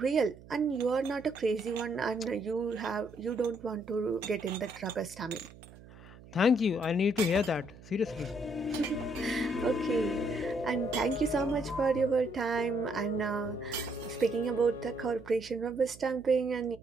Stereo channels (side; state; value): right; noise; hum, 20 dB below the sound